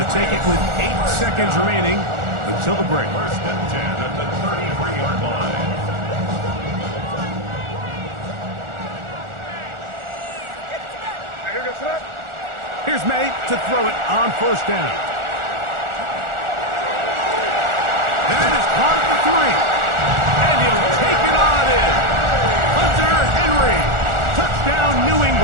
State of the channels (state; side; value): late; left; 1.4 ms